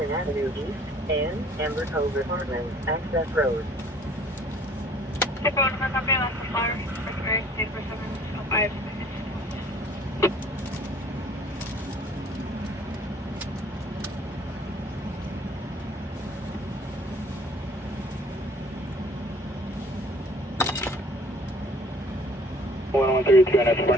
Avenue East and Amber Cove Apartments, Access Road. Stand by 145, copy last for flowers, first of Eric, date for 705. One 32 and that's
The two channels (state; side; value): normal; both; correlation 0.55